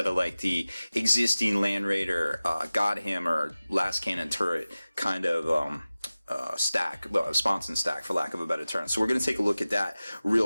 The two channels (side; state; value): both; inverted; correlation -0.97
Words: of like the existing Land Raider Godhammer last cannon turret kind of sponson stack, for lack of a better term. So we're going to take a look at that